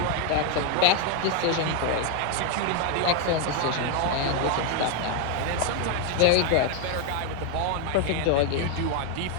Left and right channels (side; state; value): both; different; correlation 0.01